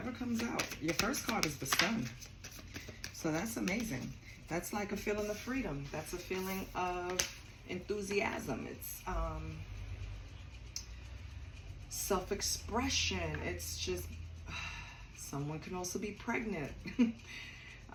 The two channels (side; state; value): both; identical; correlation 1.00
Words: comes out. Your first card is the Sun. So that's amazing. That's like a feeling of freedom. That's a feeling of enthusiasm. It's self-expression. It's just, someone can also be pregnant.